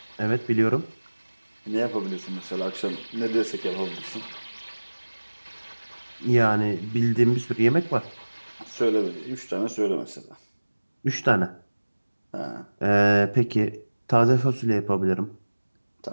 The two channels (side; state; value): both; inverted; correlation -1.00